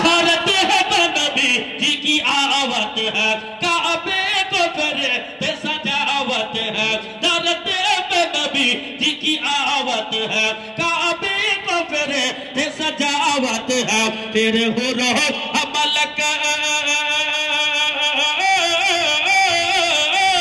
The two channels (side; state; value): both; identical; correlation 1.00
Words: थारे तो नबी जी की आवाज है, काबे को करे सजावत है। दरते पे नबी जी की आवत है, काबे को करे सजावत है। तेरे हो रहो अमल का